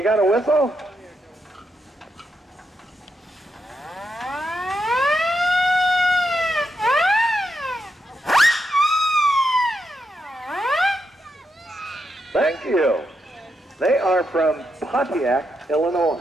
got a whistle? Thank you. They are from Pontiac, Illinois.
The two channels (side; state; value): both; normal; correlation 0.83